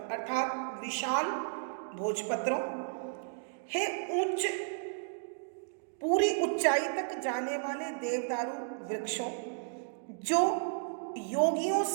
अर्थात विशाल भोजपत्रों, हे उच्च पूरी ऊंचाई तक जाने वाले देवदारू वृक्षों, जो योगियों,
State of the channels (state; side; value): silent; left; digital silence